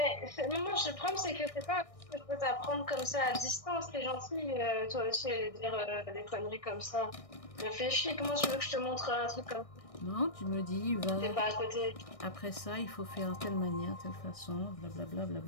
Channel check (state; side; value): late; right; 1.6 ms